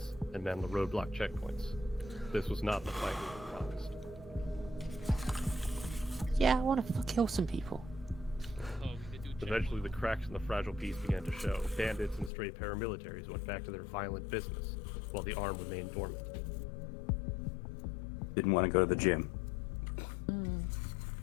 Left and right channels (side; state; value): right; drops out; at 12.3 s